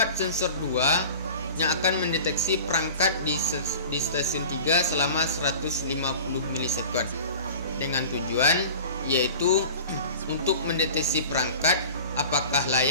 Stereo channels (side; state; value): both; inverted; correlation -0.39